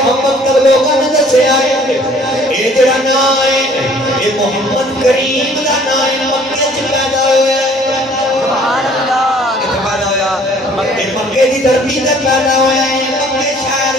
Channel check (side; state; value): both; normal; correlation 0.56